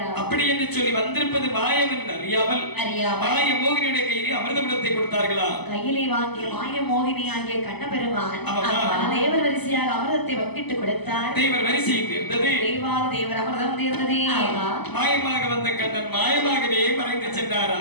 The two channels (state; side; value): late; right; 0.99 ms